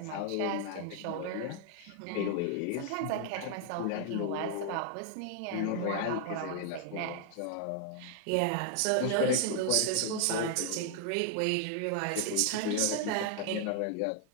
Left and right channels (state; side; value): different; both; correlation 0.00